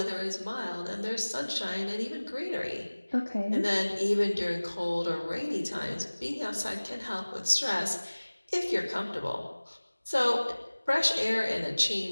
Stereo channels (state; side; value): inverted; both; correlation -1.00